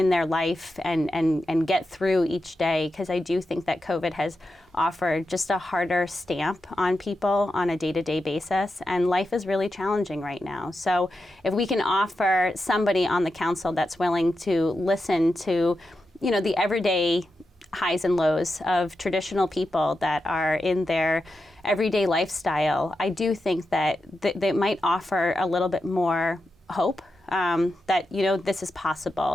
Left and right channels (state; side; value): normal; both; correlation 0.89